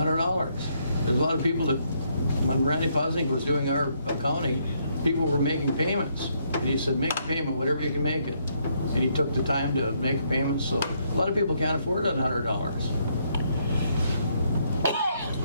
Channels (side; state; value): both; inverted; correlation -0.73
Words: There's a lot of people that, when Randy Posnick was doing our accounting, people were making payments. And he said, make a payment, whatever you can make it. And he took the time to make a payment, so a lot of people can't afford that $100.